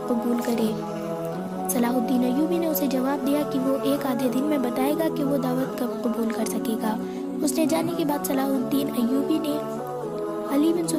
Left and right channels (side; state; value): both; identical; correlation 1.00